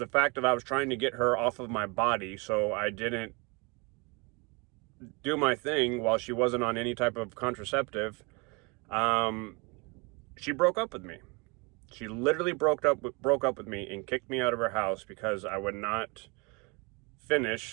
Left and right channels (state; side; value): quieter; left; 29.4 dB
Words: fact that I was trying to get her off of my body, so I didn't do my thing while she wasn't on any type of contraceptive, she broke up with me. She literally broke up with me and kicked me out of her house because I would not